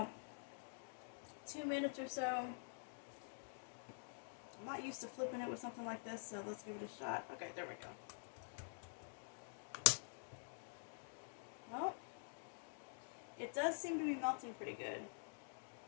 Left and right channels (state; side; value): silent; right; digital silence